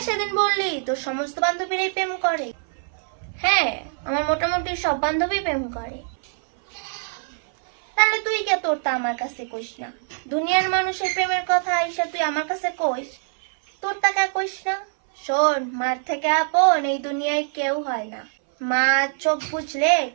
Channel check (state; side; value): silent; left; 59 dB below the other